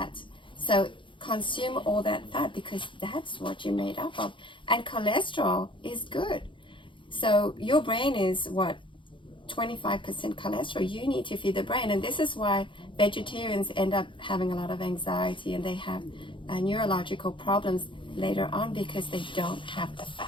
So consume all that fat, because that's what you're made up of. And cholesterol is good. So your brain is 25% cholesterol. You need to feed the brain, and this is why vegetarians end up having a lot of anxiety, and they have neurological problems later on, because they don't have the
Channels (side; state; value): right; late; 0.24 ms